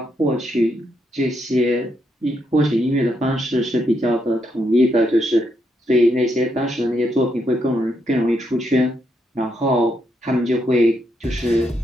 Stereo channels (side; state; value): both; normal; correlation 0.79